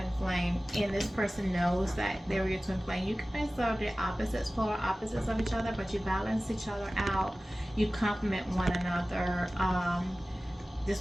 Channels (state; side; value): normal; both; correlation 0.97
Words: flame, and this person knows that they were your twin flame. You guys are the opposites, polar opposites of each other, but you balance each other out. You complement one another.